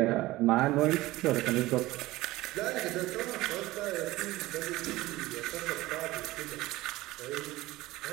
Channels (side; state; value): left; quieter; 18.3 dB